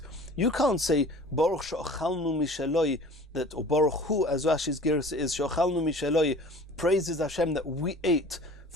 You can't say Baruch she'ochalnu mishaloi, that, or Baruch Hu, as Rashi's gersa is, she'ochalnu mishaloi, praises Hashem that we ate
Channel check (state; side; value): normal; both; correlation 0.45